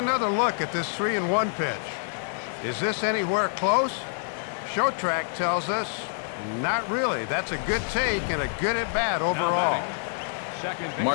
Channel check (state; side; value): silent; right; digital silence